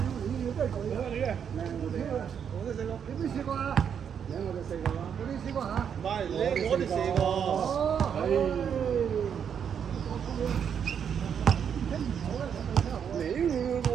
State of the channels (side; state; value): left; quieter; 7.8 dB